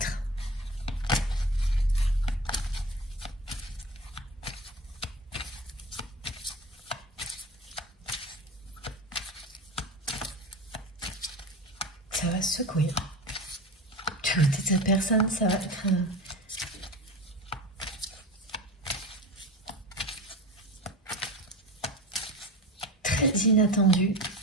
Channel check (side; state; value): both; normal; correlation 0.31